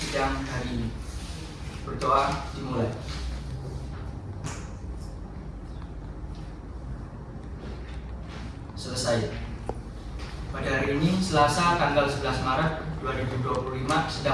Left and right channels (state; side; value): identical; both; correlation 1.00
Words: hari ini. Berdoa dimulai. Selesai. Pada hari ini, Selasa tanggal 11 Maret 2025,